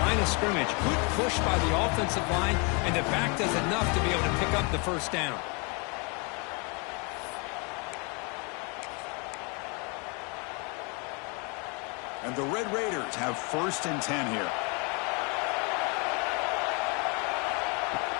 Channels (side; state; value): right; quieter; 32.9 dB